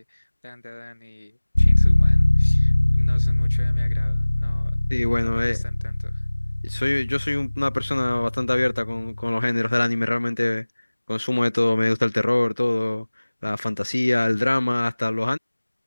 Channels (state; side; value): inverted; both; correlation -1.00